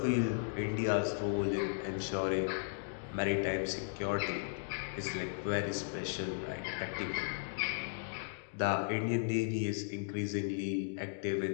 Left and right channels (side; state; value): right; silent; digital silence